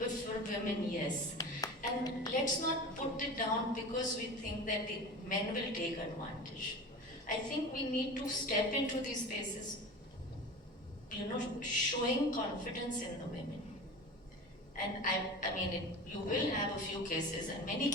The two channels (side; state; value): both; normal; correlation 0.33